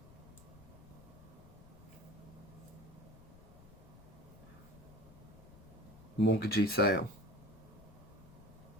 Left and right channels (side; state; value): left; noise; rumble, 19 dB below the sound